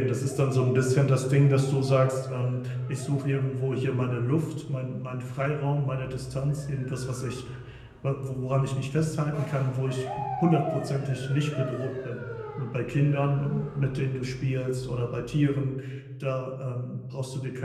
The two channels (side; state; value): both; identical; correlation 1.00